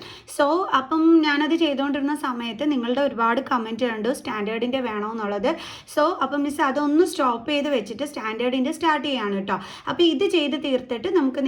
സോ അപ്പം ഞാനത് ചെയ്തുകൊണ്ടിരുന്ന സമയത്ത് നിങ്ങളുടെ ഒരുപാട് കമൻറ്റ് കണ്ടു സ്റ്റാൻഡേർഡിൻ്റെ വേണമെന്നുള്ളത്. സോ അപ്പം മിസ് അതൊന്ന് സ്റ്റോപ്പ് ചെയ്ത് വെച്ചിട്ട് സ്റ്റാൻഡേർഡിൻ്റെ സ്റ്റാർട്ട് ചെയ്യാണ് കേട്ടോ. അപ്പോൾ ഇത് ചെയ്ത് തീർത്തിട്ട് നമുക്ക്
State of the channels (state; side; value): identical; both; correlation 1.00